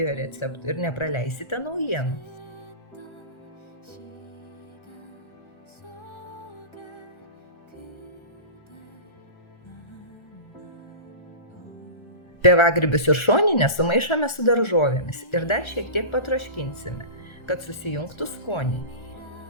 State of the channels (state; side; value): late; right; 1.3 ms